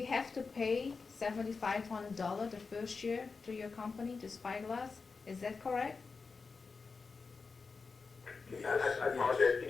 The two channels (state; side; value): quieter; right; 4.6 dB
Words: have to pay $7,500 the first year to your company, to Spyglass, is that correct? I apologize. Can